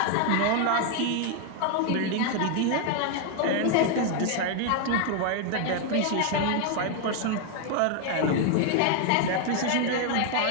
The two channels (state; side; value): different; both; correlation 0.01